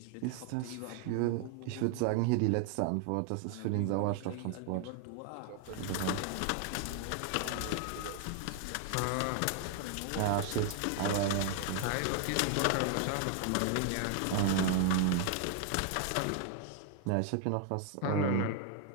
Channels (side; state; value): both; different; correlation 0.00